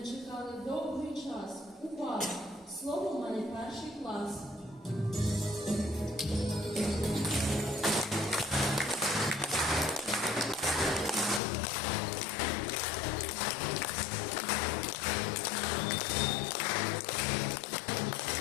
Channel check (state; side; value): drops out; right; at 11.4 s